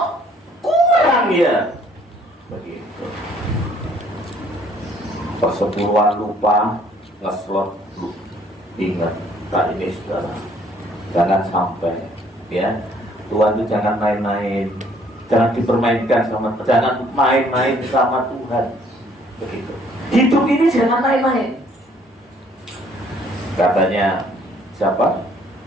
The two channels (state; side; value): normal; both; correlation 0.62